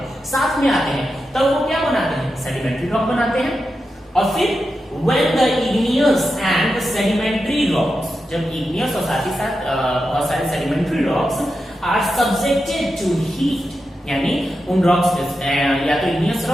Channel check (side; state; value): both; normal; correlation 0.89